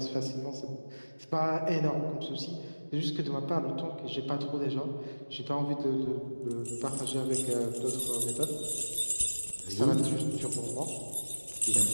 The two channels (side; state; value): both; inverted; correlation -1.00